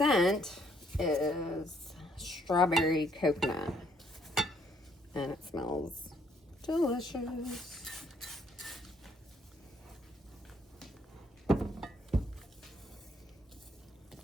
is strawberry coconut. And it smells delicious.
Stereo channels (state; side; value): normal; both; correlation 0.68